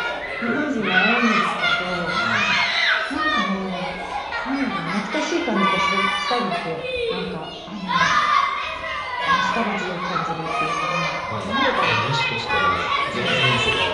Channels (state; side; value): identical; both; correlation 1.00